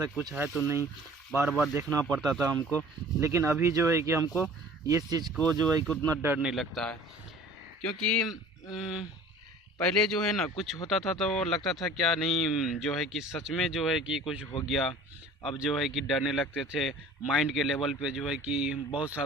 कुछ है तो नहीं, बार बार देखना पड़ता था हमको. लेकिन अभी जो है कि हमको ये चीज़ को जो है कि उतना डर नहीं लगता है, क्योंकि पहले जो है ना कुछ होता था तो लगता था क्या नहीं, जो है कि सच में जो है कि कुछ हो गया. अब जो है कि डरने लगते थे. माइंड के लेवल पे जो है कि बहुत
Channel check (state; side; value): normal; both; correlation 0.46